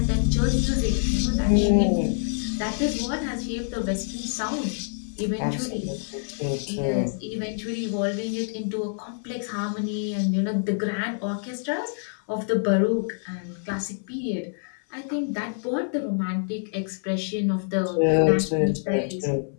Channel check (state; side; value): silent; right; 56 dB below the other